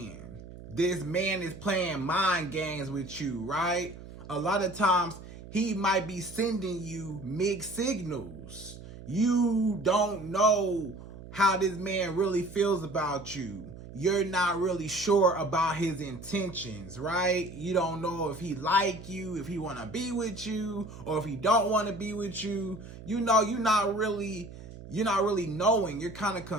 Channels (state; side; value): noise; right; hum, 15 dB below the sound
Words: This man is playing mind games with you, right? A lot of times he might be sending you mixed signals. You don't know how this man really feels about you. You're not really sure about his intentions, right? You don't know if he like you, if he want to be with you, or if he don't want to be with you. You know, you're not really knowing. You're kind of